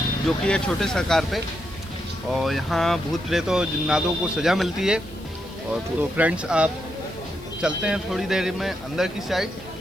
जो कि है छोटे सा कार पे। और यहाँ भूत प्रेत और जिन्नातों को सज़ा मिलती है। और तो फ्रेंड्स, आप चलते हैं थोड़ी देर में अंदर की साइड।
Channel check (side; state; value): left; noise; hiss, 25 dB below the sound